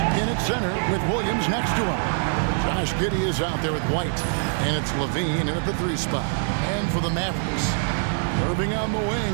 in at center with Williams next to him. Josh Giddey is out there with White. And it's Levine in at the 3 spot. And for the Mavericks, Irving on the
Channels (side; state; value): left; silent; digital silence